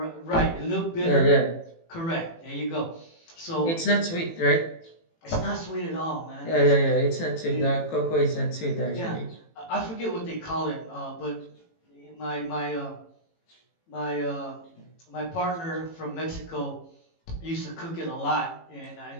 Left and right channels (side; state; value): right; late; 18 ms